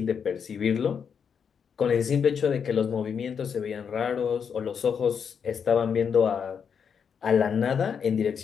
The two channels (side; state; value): right; quieter; 6.9 dB